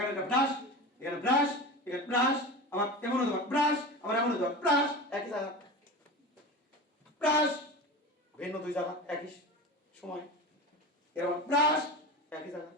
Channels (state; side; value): normal; both; correlation 0.29